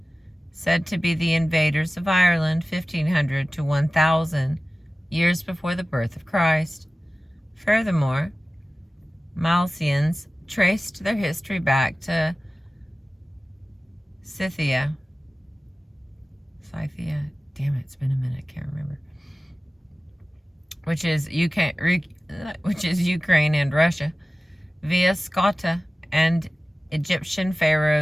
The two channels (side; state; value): both; normal; correlation 0.96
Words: said to be the invaders of Ireland 1500 to 1000 years before the birth of Christ. Furthermore, Milesians traced their history back to Scythia. Damn it, it's been a minute, I can't remember. Which is Ukraine and Russia, via Scotta, and Egyptian